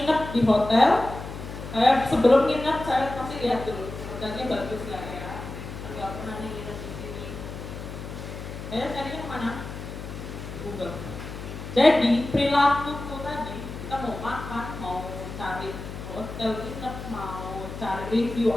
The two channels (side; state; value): left; noise; hum, 9 dB below the sound